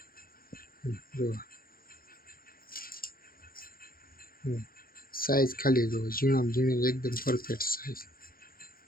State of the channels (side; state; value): right; late; 0.42 ms